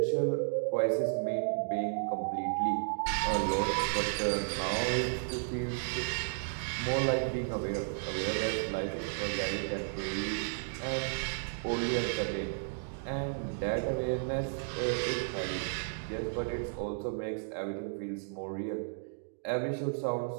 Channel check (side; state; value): left; silent; digital silence